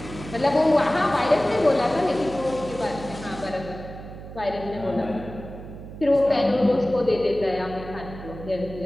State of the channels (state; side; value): noise; right; hum, 13 dB below the sound